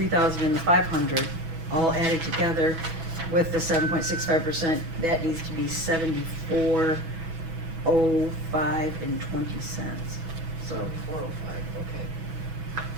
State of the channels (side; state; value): left; late; 6.1 ms